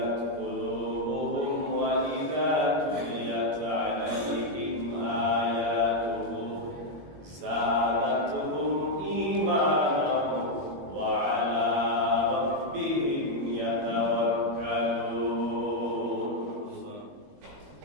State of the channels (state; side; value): late; left; 21 ms